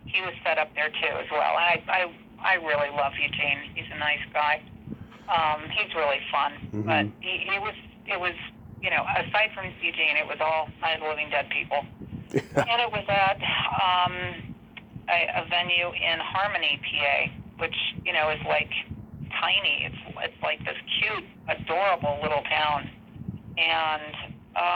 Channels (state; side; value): identical; both; correlation 1.00